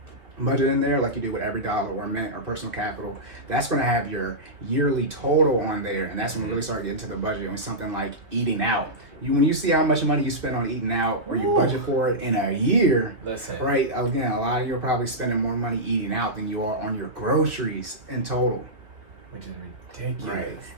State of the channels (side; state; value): left; late; 2.5 ms